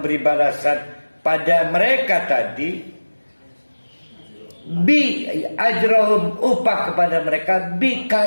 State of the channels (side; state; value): both; inverted; correlation -1.00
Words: balasan pada mereka tadi, bi ajrahum, upah kepada mereka, bi